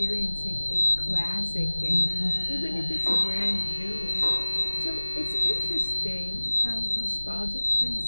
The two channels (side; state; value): both; inverted; correlation -1.00